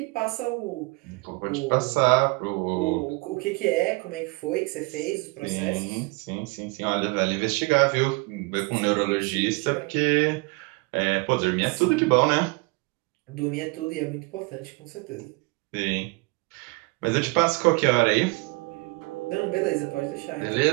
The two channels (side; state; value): left; quieter; 26.8 dB